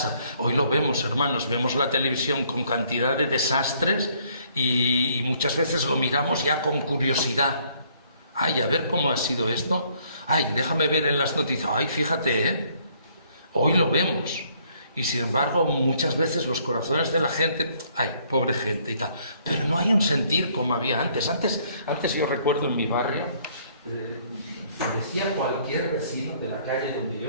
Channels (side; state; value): both; inverted; correlation -0.65